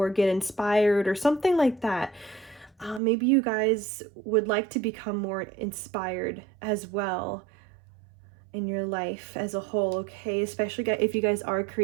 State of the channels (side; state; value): left; drops out; at 3.0 s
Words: get inspired or something like that, maybe you guys would like to become more inspired as well in your life as a whole, okay? Especially if you guys are